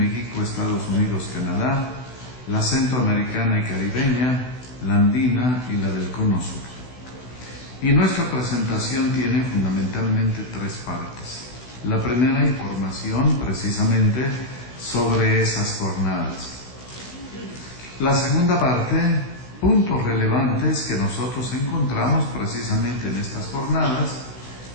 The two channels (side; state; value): right; late; 16 ms